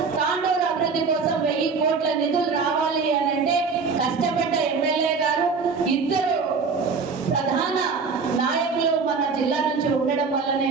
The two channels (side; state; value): left; quieter; 5.0 dB